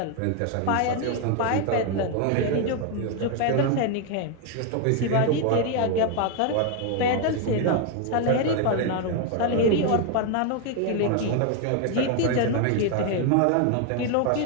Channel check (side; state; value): both; different; correlation 0.01